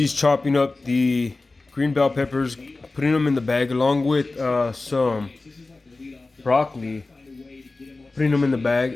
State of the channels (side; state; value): right; quieter; 3.4 dB